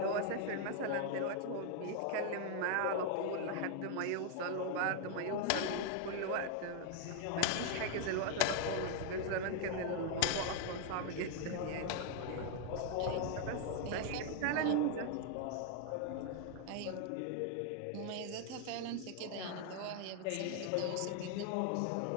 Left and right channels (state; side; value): different; both; correlation 0.00